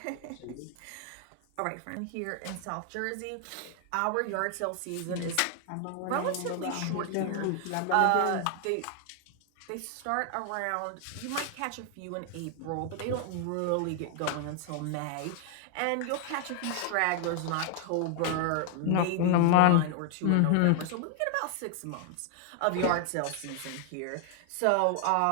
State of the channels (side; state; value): both; different; correlation 0.00